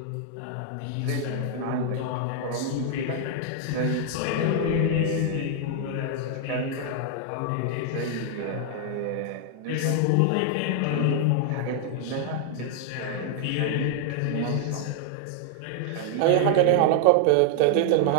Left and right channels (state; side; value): different; both; correlation 0.00